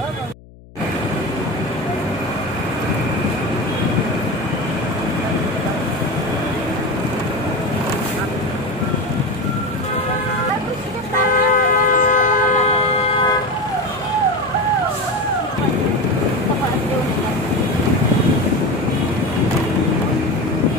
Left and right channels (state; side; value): noise; left; hum, 22 dB below the sound